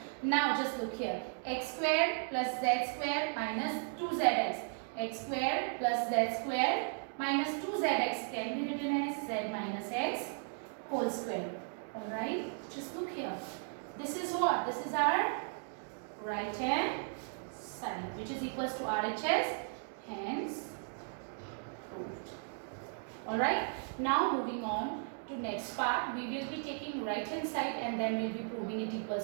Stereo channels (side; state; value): left; silent; 54 dB below the other